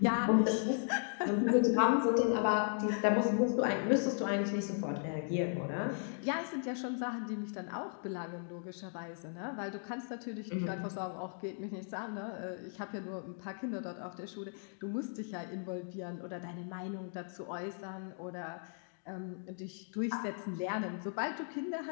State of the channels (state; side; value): silent; right; 53 dB below the other